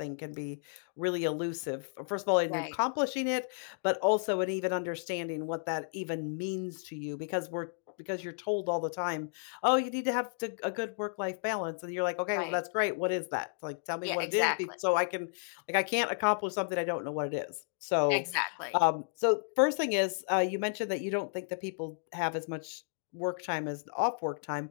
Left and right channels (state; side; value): silent; right; digital silence